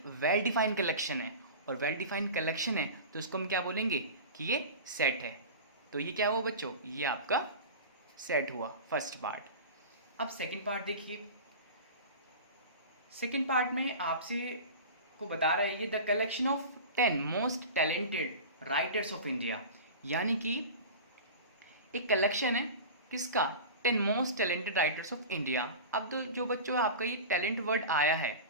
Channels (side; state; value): both; inverted; correlation -0.32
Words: वेल डिफाइंड कलेक्शन है, और वेल डिफाइंड कलेक्शन है तो इसको हम क्या बोलेंगे कि ये सेट है। तो ये क्या हुआ बच्चों? ये आपका सेट हुआ फर्स्ट पार्ट। अब सेकंड पार्ट देखिए। सेकंड पार्ट में आपसे को बता रहा है ये the collection of 10 most talented writers of India. यानी कि एक कलेक्शन है किसका? 10 most talented writers of India. अब तो जो बच्चों आपका ये टैलेंट वर्ड आया है,